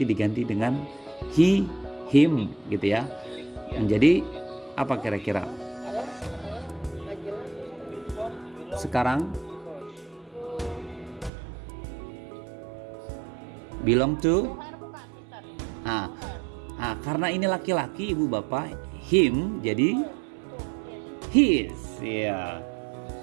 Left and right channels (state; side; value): drops out; left; at 11.3 s